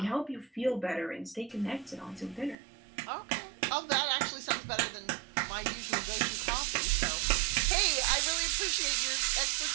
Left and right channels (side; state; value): left; drops out; at 2.6 s